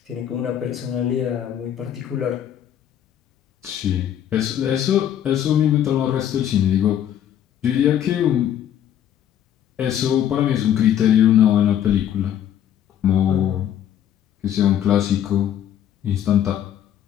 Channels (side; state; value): right; quieter; 10.2 dB